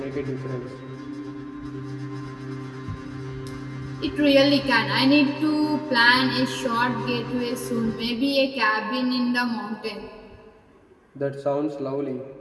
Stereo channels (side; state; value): both; identical; correlation 1.00